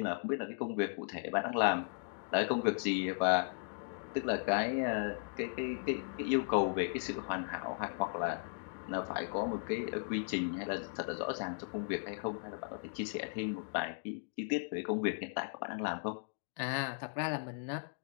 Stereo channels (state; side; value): silent; right; digital silence